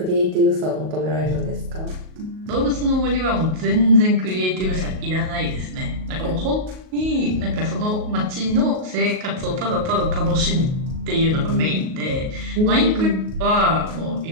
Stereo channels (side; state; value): left; late; 38 ms